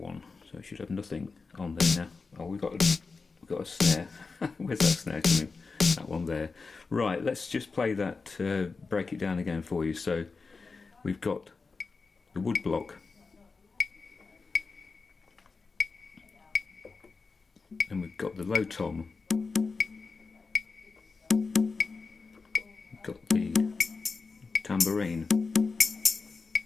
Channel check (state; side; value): quieter; right; 4.4 dB